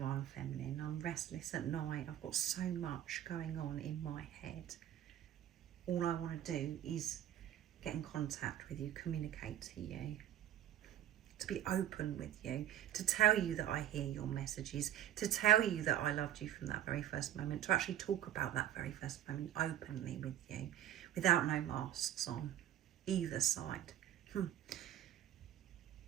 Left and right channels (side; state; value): left; quieter; 11.7 dB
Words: Feminine. I'm restless at night. I've got so much going on in my head. All I want to do is get in contact with you, communicate to you, to be open with you, to tell you that I hear your messages, to tell you that I loved you from that very first moment, to actually talk about that very first moment openly with you, without no masks on either side.